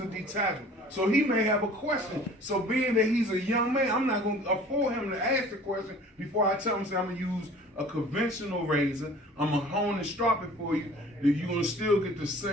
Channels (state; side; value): normal; both; correlation 0.47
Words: detachable. So he may have a question. So being that he's a young man, I'm not gonna afford him to ask the question before I tell him, say, I'm gonna use a conventional razor. I'm gonna hone and strop it for you. That you're gonna still get the